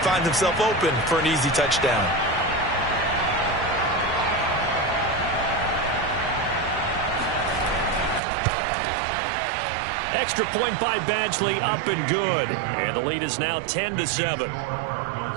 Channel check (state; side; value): drops out; left; at 8.2 s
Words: himself open for an easy touchdown. Extra point by Badgley, up and good. And the lead is now 10-7.